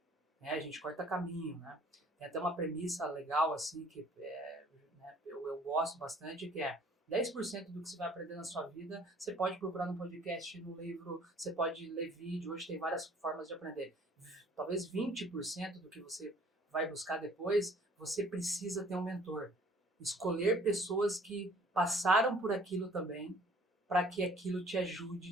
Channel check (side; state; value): both; normal; correlation 0.55